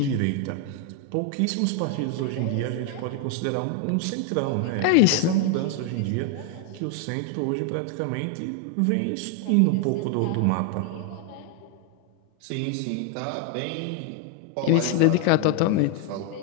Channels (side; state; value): both; different; correlation 0.01